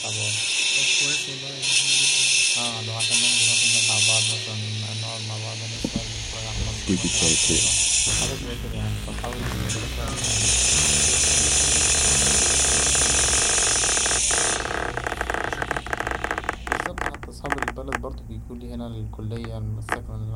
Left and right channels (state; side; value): identical; both; correlation 1.00